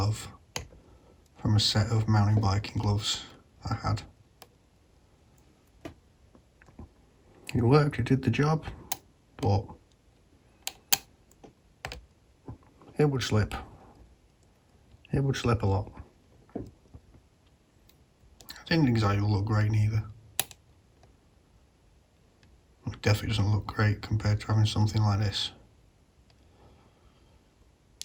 from a set of mountain biking gloves I had. It worked, it did the job, but it would slip. It would slip a lot. It didn't exactly look great neither. It definitely doesn't look great compared to having something like this.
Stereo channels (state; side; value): identical; both; correlation 1.00